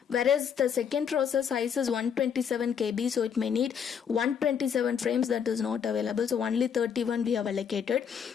whereas the second process size is 127 KB, so it may need 127 frames. That is not available, so only 31 we have allocated.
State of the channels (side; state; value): right; quieter; 7.5 dB